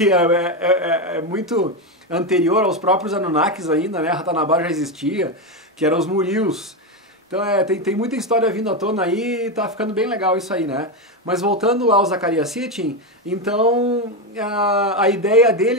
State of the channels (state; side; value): normal; both; correlation 0.11